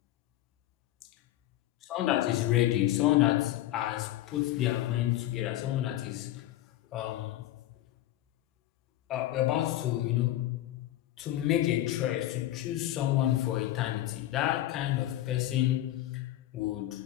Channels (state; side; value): quieter; right; 14.4 dB